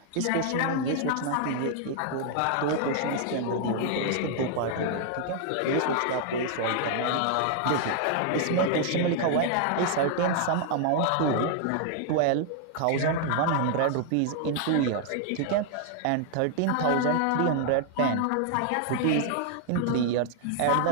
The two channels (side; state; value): both; different; correlation 0.00